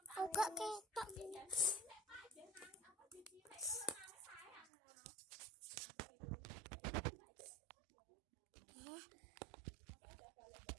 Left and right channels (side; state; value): left; drops out; at 4.7 s